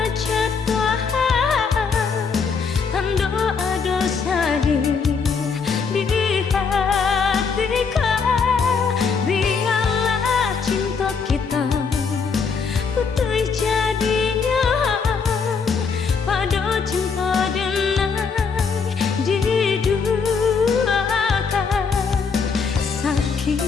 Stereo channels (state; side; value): quieter; right; 5.5 dB